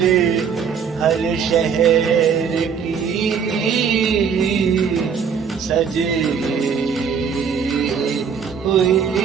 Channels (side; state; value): left; quieter; 6.7 dB